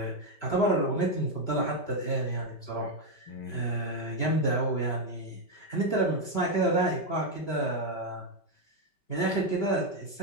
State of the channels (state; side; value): late; right; 5.2 ms